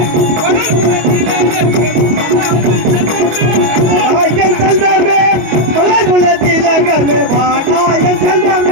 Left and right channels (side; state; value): left; late; 25 ms